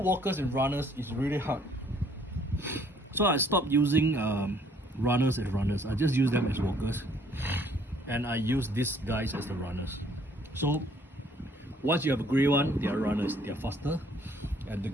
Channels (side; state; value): both; normal; correlation 0.62